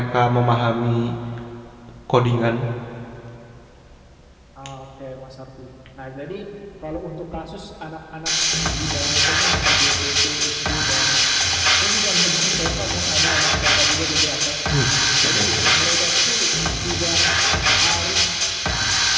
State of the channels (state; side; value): identical; both; correlation 1.00